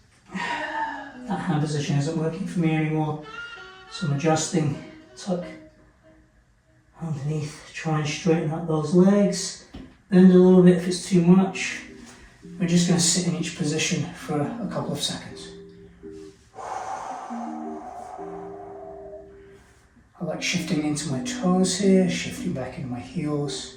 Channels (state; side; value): identical; both; correlation 1.00